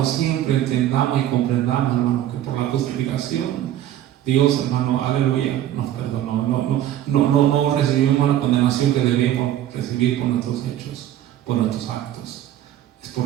siempre entendamos y comprendamos, hermanos, que por la justificación, Dios, hermano, aleluya, nos perdonó. No recibimos la condenación que debemos recibir por nuestros hechos, por nuestros actos. Es por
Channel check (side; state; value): left; quieter; 12.1 dB